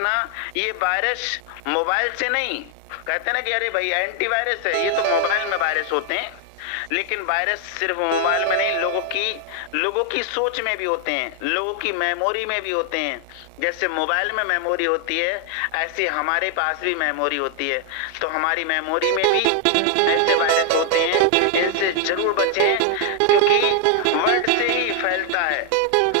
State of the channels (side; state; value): both; different; correlation 0.00